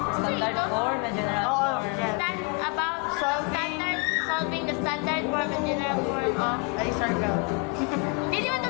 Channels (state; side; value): quieter; right; 31.4 dB